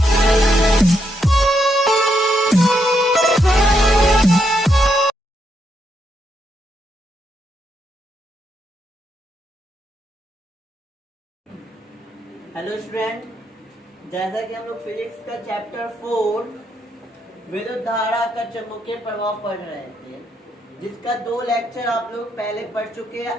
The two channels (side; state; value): both; normal; correlation 0.79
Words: student, जैसा कि हम लोग फिजिक्स का चैप्टर 4 विद्युत धारा का चुंबकीय प्रभाव पढ़ रहे थे, जिसका 2 लेक्चर आप लोग पहले पढ़ चुके